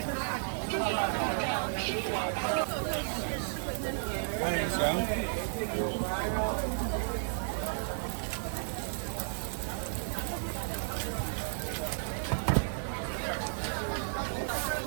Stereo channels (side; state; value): left; silent; digital silence